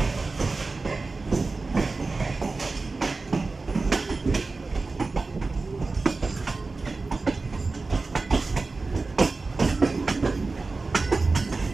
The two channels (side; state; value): left; quieter; 3.8 dB